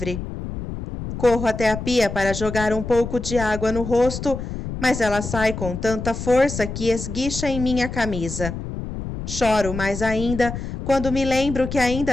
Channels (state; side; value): noise; left; rumble, 7 dB below the sound